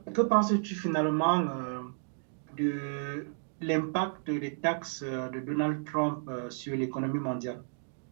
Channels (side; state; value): left; silent; digital silence